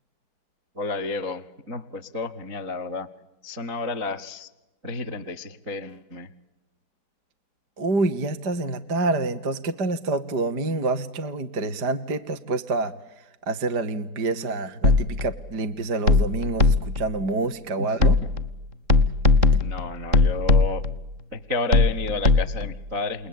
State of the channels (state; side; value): late; left; 4.9 ms